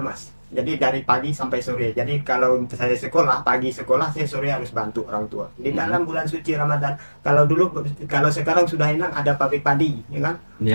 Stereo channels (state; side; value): inverted; both; correlation -1.00